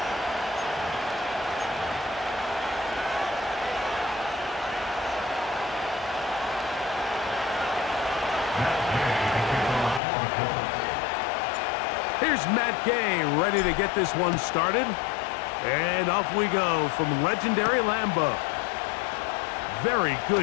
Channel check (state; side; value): drops out; right; at 10.0 s